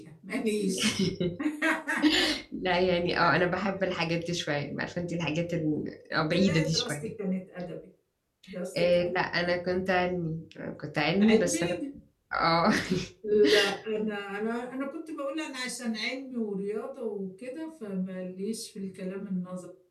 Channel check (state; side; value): identical; both; correlation 1.00